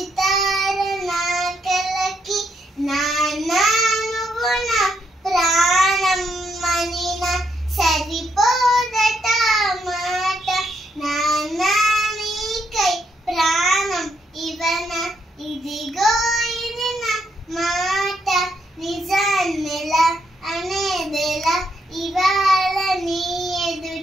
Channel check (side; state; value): both; normal; correlation 0.77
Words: నా కలకి నాన్న నువ్వు నా ప్రాణం మనిన సరిపోదట మాట నాన్న నీకై ప్రాణం ఇవన ఇదిగో ఇది నా మాట నిజాన్నెలా అనేదెలా ఇవాళ నీ